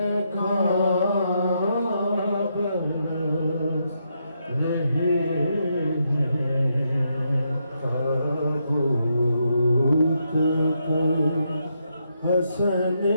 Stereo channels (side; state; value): both; inverted; correlation -0.80